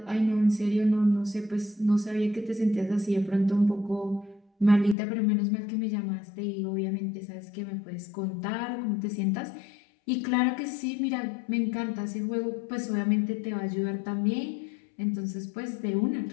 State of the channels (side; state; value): right; drops out; at 5.0 s